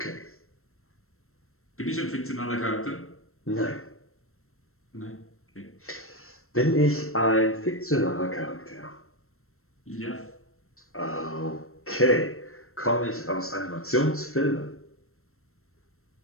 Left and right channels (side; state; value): right; late; 0.62 ms